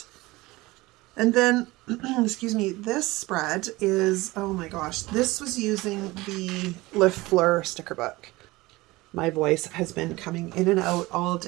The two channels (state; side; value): quieter; left; 20.7 dB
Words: And then, excuse me, this spread is, oh my gosh, this was using the Le Fleur sticker book. My voice has been coming in and out all